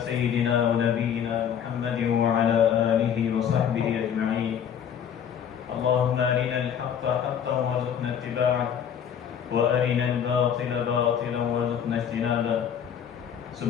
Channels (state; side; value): quieter; right; 8.4 dB